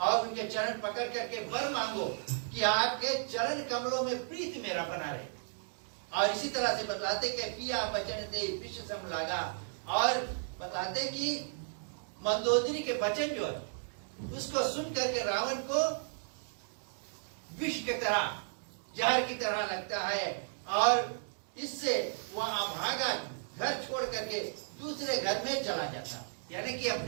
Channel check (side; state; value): left; silent; digital silence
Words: उनके चरण पकड़ करके वर मांगो कि आपके चरण कमलों में प्रीति मेरा बना रहे। और इसी तरह से बतलाते कि पिया बचन दे विश्व सम लागा, और बताते कि मंदोदरी के वचन जो है उसको सुन करके रावण को विष की तरह, जहर की तरह लगता है, और इससे वह भागा, घर छोड़ करके दूसरे घर में चला जाता, यानी कि